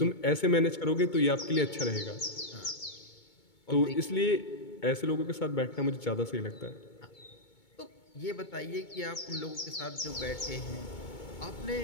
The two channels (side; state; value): right; late; 2.2 ms